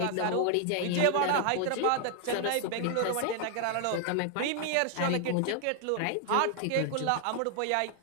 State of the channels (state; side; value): different; both; correlation 0.00